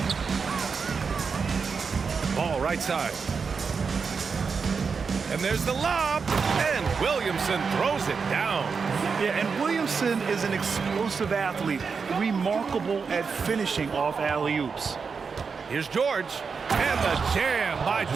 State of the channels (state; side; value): quieter; left; 5.4 dB